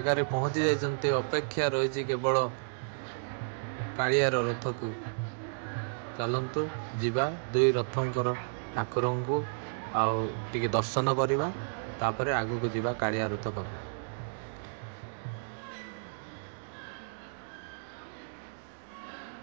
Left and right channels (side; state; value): left; silent; digital silence